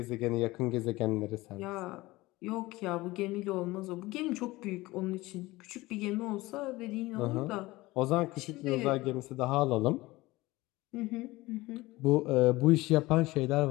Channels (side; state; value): right; quieter; 19.9 dB